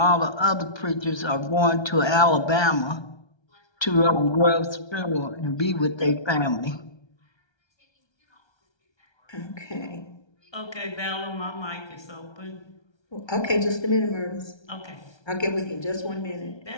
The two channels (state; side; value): late; right; 1.3 ms